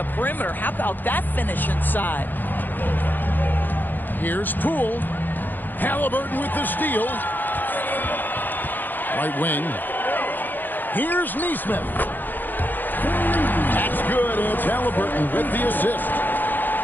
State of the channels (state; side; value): late; right; 0.088 ms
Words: perimeter. How about that finish inside? Here's Poole. Halliburton with the steal. Right wing. Here's Neesmith. That's good. It's Halliburton with the assist.